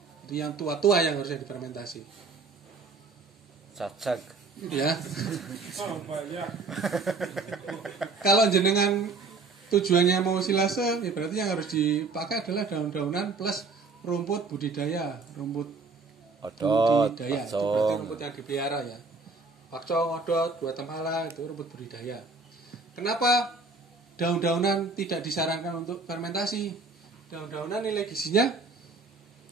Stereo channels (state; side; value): quieter; left; 4.0 dB